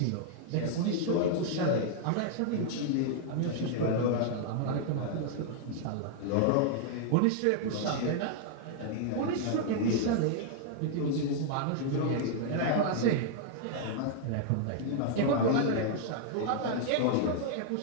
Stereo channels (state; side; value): different; both; correlation -0.01